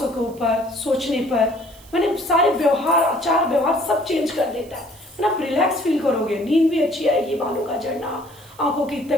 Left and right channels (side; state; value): right; noise; hiss, 24 dB below the sound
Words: के ऊपर, सोचने पर, मैंने सारे व्यवहार, आचार व्यवहार सब चेंज कर देता है। आप रिलैक्स फील करोगे, नींद भी अच्छी आएगी, बालों का झड़ना, आंखों की